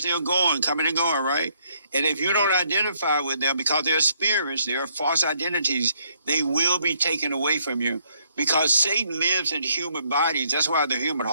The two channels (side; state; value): both; inverted; correlation -0.70